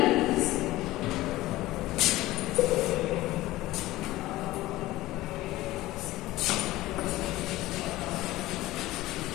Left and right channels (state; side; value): quieter; right; 17.4 dB